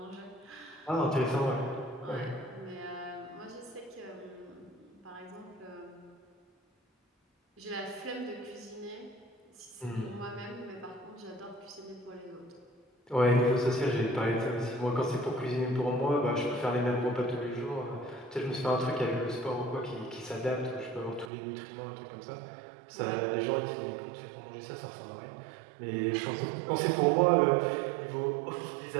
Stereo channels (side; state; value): left; drops out; at 21.3 s